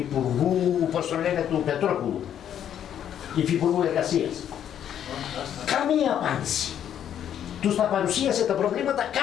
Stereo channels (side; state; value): right; quieter; 9.8 dB